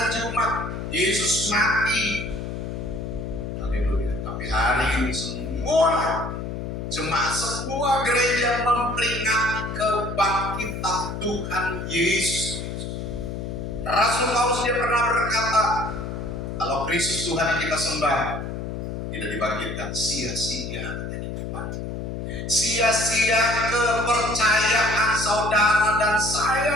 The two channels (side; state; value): left; noise; hum, 6 dB below the sound